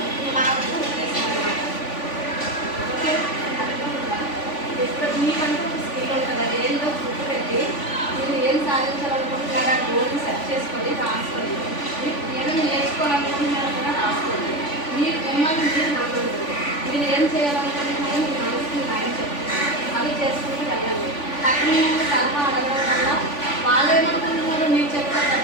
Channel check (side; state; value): right; late; 3.5 ms